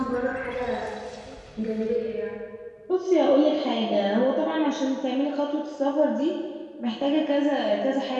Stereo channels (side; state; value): both; identical; correlation 1.00